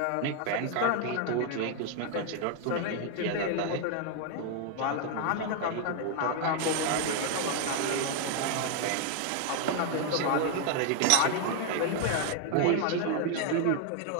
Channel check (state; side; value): different; both; correlation 0.01